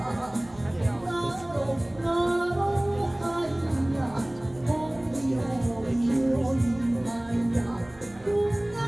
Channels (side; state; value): right; noise; hum, 24 dB below the sound